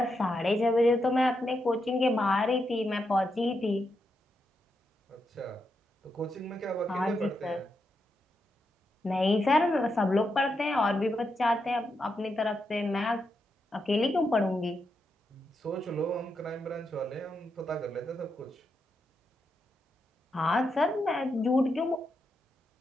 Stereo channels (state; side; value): normal; both; correlation 0.84